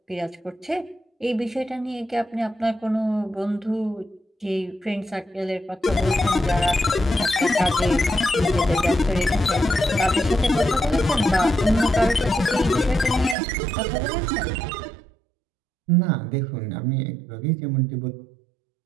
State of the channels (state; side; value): drops out; left; at 13.4 s